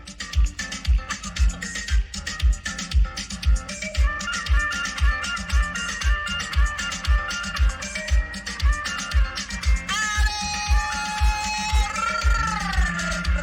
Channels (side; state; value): both; identical; correlation 1.00